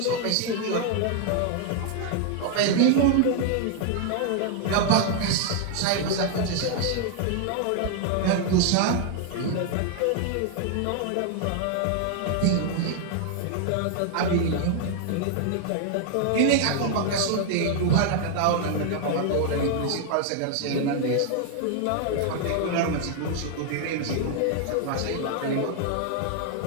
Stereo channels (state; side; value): different; both; correlation 0.00